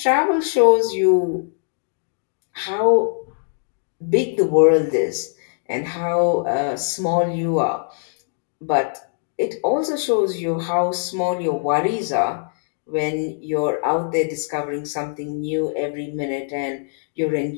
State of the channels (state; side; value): silent; right; digital silence